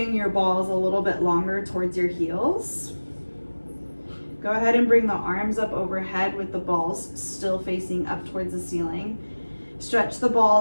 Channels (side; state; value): both; inverted; correlation -1.00